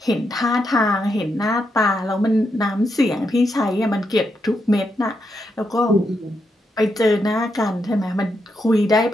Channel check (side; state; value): both; normal; correlation 0.82